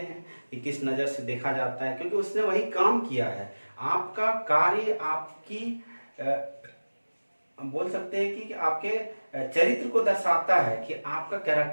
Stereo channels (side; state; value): both; inverted; correlation -1.00